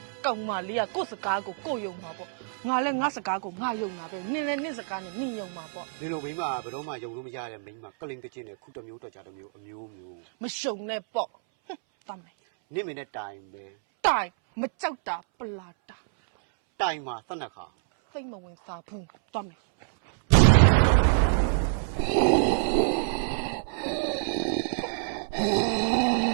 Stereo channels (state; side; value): silent; left; 60 dB below the other